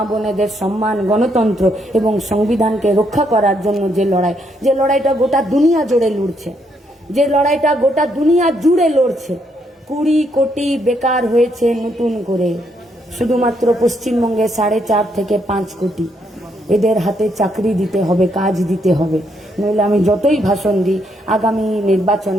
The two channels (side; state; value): both; normal; correlation 0.74